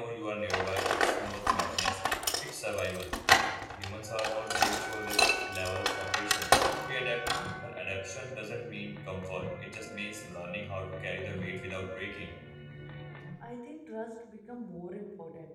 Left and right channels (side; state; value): both; identical; correlation 1.00